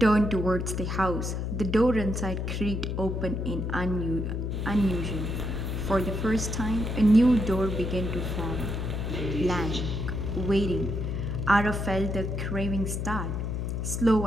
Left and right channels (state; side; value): noise; left; hum, 2 dB below the sound